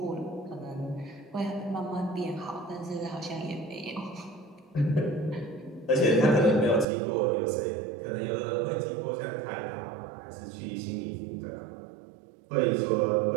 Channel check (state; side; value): drops out; left; at 6.9 s